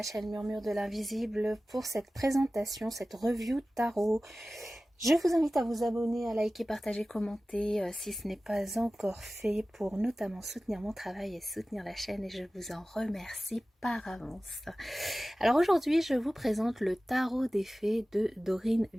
chaîne Murmure de l'Invisible pour cette présentation, cette review tarot. Je vous invite à vous abonner, à liker, partager, commenter si ce n'est pas encore fait pour notamment soutenir mon travail et soutenir la chaîne et je vous en remercie par avance. Alors aujourd'hui, je vous présente le tarot des fées de Dorine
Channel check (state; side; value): normal; both; correlation 0.96